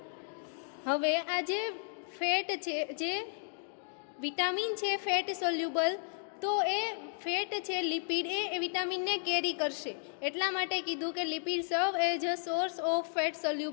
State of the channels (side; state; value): right; silent; digital silence